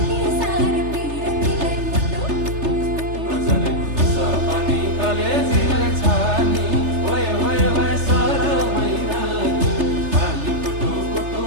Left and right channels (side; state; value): left; late; 3.3 ms